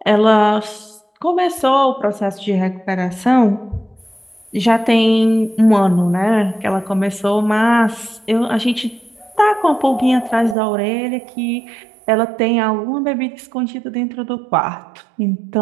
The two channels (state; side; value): drops out; left; at 10.6 s